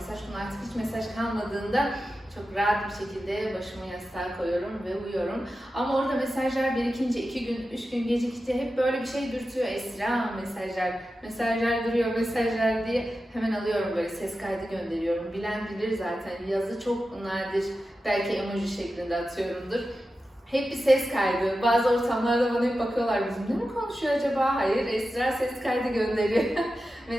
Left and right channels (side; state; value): both; normal; correlation 0.92